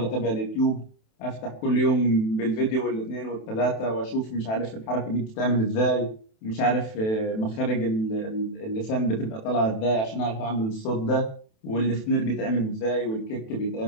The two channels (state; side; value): late; right; 27 ms